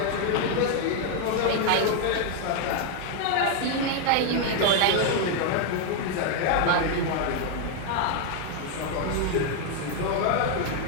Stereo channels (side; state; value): both; different; correlation 0.00